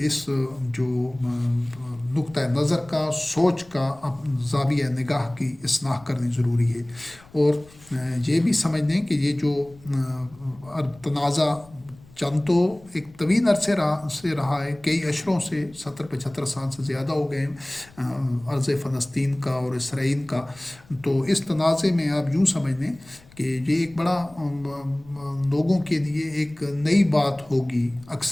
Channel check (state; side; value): noise; left; rumble, 25 dB below the sound